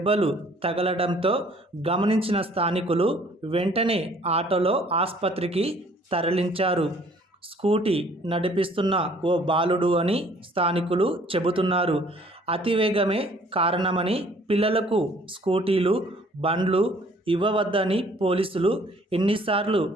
తగలడంతో గమనించిన స్థానికులు వెంటనే ఆటోలో ఆసుపత్రికి తరలించారు. స్కూటీ నడిపిస్తున్న ఓ బాలుడు అని స్థానికులు చెబుతున్నారు. అతివేగమే కారణమని, పిల్లలకు స్కూటీలు, బండ్లు ఇవ్వవద్దని పోలీసులు ఎన్నిసార్లు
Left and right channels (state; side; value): normal; both; correlation 0.57